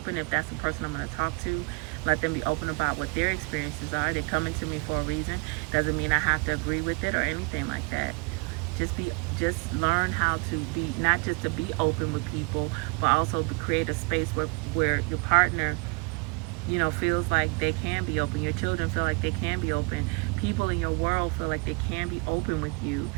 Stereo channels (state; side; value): quieter; left; 31.2 dB